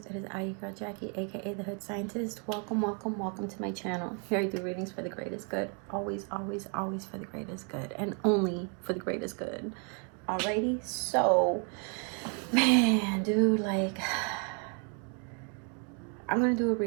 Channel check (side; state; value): left; quieter; 39.3 dB